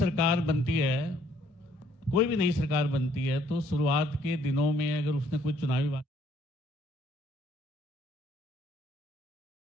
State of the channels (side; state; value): both; normal; correlation 0.64